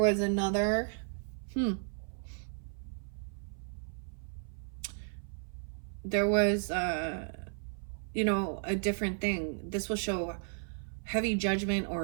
another there was you know, a different thing. This will show heavy judgment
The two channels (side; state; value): left; silent; 55 dB below the other